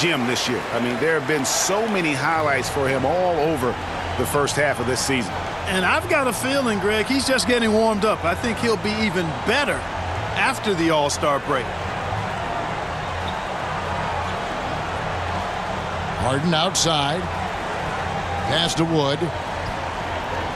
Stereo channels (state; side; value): identical; both; correlation 1.00